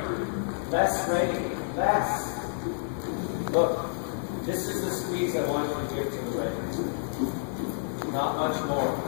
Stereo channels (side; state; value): right; silent; digital silence